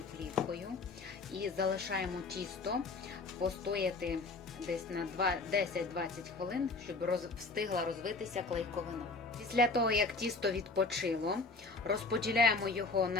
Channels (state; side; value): quieter; right; 3.8 dB